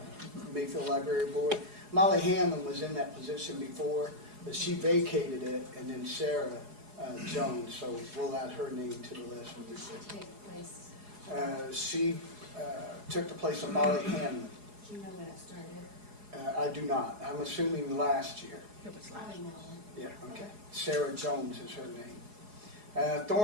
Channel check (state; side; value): late; left; 4.8 ms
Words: Library Board. Molly Hanlon was in that position before, but she vacated it, and then Sarah Jones, so we'll add her name to the list. Take place. She took the place of Molly Hanlon. Do you know when it started? I do not. I'm assuming last year. It was last. Probably no. Yeah, okay. Sarah Jones is her name.